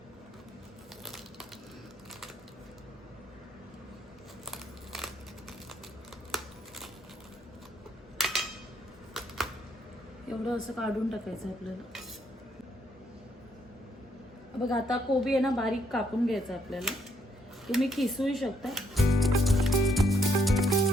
एवढं असं काढून टाकायचं आपल्याला. बघा आता कोबी आहे ना बारीक कापून घ्यायचं आपल्याला. तुम्ही किसूही शकता.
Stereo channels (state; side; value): normal; both; correlation 0.72